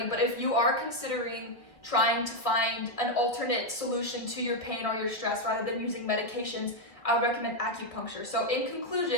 but if you are considering trying to find an alternate solution to your pain or your stress rather than using medications, I would recommend acupuncture. So in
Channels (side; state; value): right; late; 1.6 ms